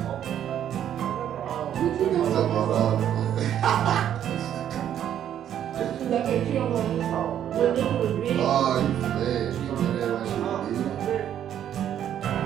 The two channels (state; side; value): quieter; left; 10.3 dB